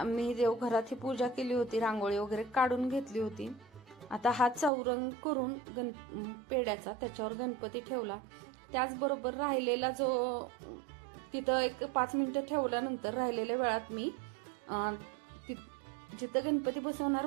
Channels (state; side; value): drops out; left; at 4.7 s